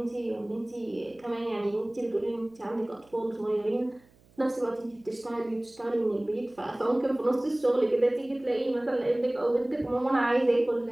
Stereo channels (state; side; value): noise; right; hum, 30 dB below the sound